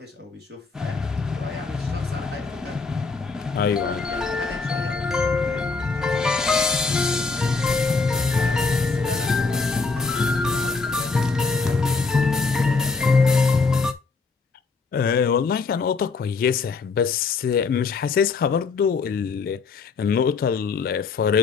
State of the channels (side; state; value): right; quieter; 4.4 dB